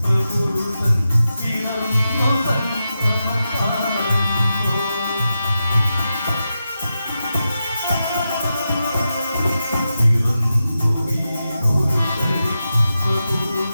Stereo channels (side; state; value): both; inverted; correlation -0.89